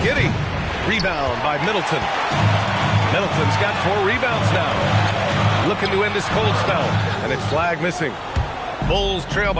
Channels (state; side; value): identical; both; correlation 1.00